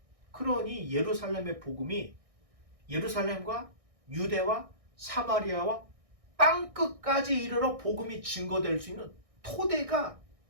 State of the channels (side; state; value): left; late; 1.6 ms